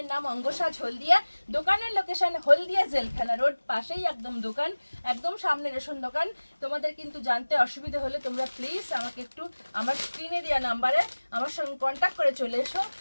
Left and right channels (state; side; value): inverted; both; correlation -1.00